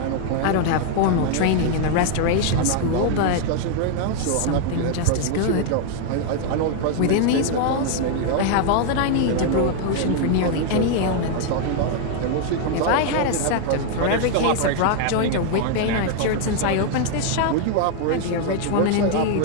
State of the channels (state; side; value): different; both; correlation 0.00